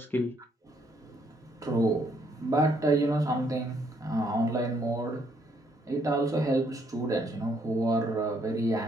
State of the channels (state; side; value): normal; both; correlation 0.70